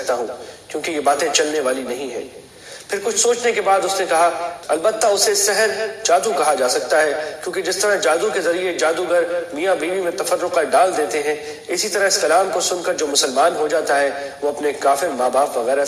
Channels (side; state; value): both; identical; correlation 1.00